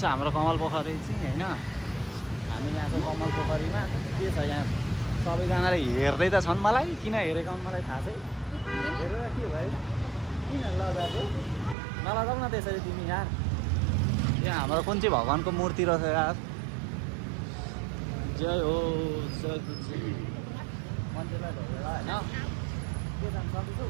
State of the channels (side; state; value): left; drops out; at 11.8 s